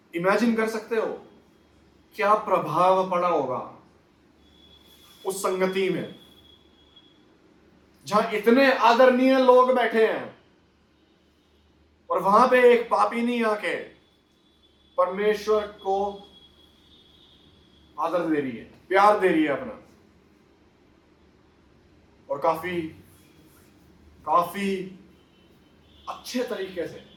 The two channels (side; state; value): both; identical; correlation 1.00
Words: इमेजिन कर सकते हो क्या प्रभाव पड़ा होगा उस संगति में, जहां इतने आदरणीय लोग बैठे हैं और वहां पे एक पापिनी आके परमेश्वर को आदर दे रही है, प्यार दे रही है अपना, और काफी अच्छे तरीके से,